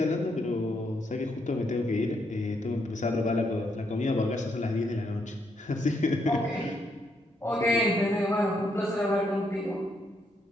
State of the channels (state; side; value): normal; both; correlation 0.76